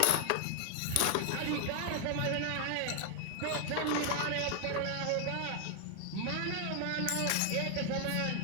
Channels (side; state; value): both; different; correlation 0.00